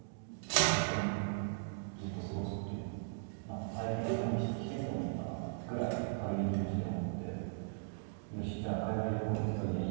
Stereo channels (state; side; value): silent; left; digital silence